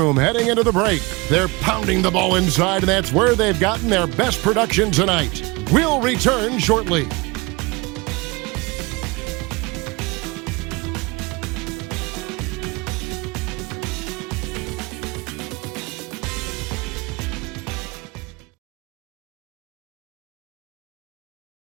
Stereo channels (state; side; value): quieter; left; 25.5 dB